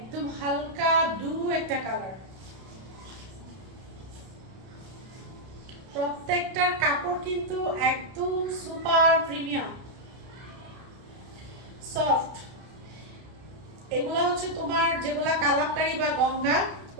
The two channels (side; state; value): left; late; 32 ms